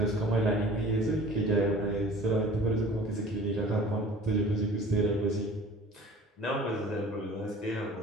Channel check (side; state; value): both; normal; correlation 0.45